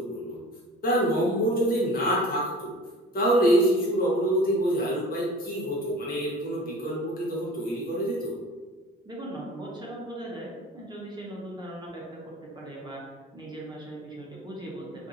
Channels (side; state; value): both; normal; correlation 0.42